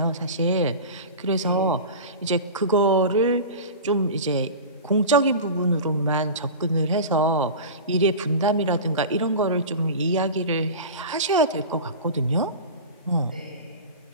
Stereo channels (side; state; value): both; inverted; correlation -0.31